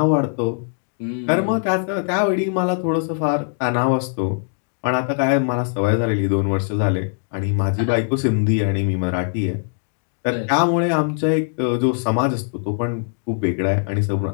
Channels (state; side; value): silent; right; digital silence